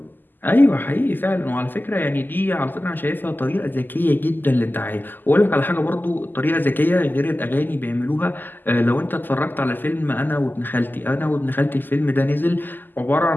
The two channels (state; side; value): late; right; 0.090 ms